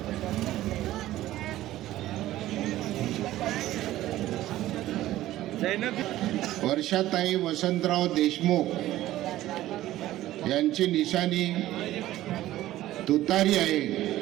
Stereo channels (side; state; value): left; quieter; 14.9 dB